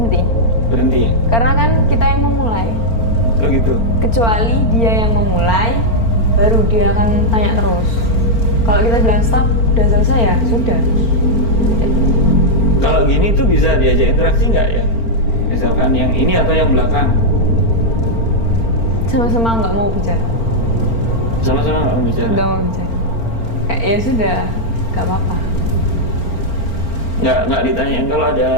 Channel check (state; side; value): late; right; 4.4 ms